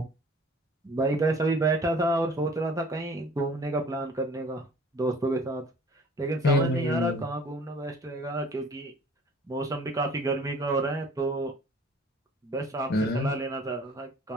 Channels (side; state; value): both; normal; correlation 0.51